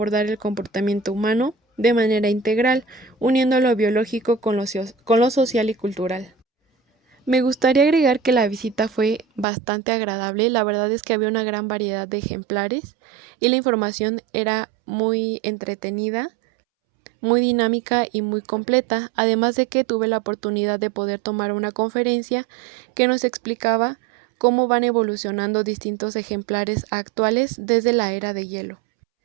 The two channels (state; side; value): drops out; left; at 9.5 s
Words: el comportamiento humano de manera integral, uniendo lo biológico con lo social y cultural. Me gustaría agregar que la visita fue bastante agradable, la verdad es que había una gran variedad de ejemplares y la información era muy entretenida, muy dinámica y muy completa, además de que tuve la oportunidad de poder tomar una conferencia que nos explicaba cómo van evolucionando distintos ejemplares actuales desde la era de hielo.